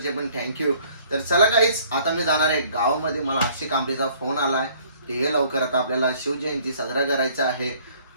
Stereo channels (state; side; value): inverted; both; correlation -0.58